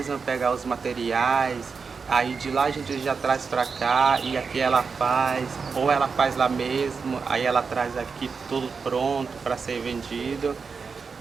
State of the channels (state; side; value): quieter; left; 5.2 dB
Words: pegar os materiais, aí de lá a gente já traz pra cá e aqui ela faz, ou ela faz lá mesmo, aí ela traz aqui tudo pronto para ser vendido.